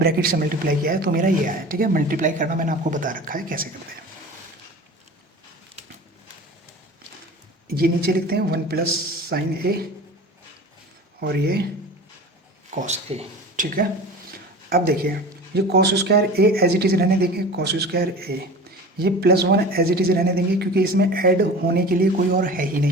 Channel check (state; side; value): normal; both; correlation 0.37